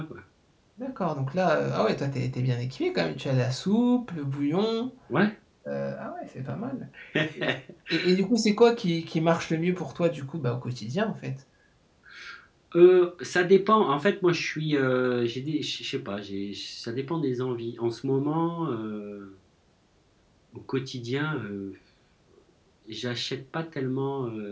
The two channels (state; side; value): identical; both; correlation 1.00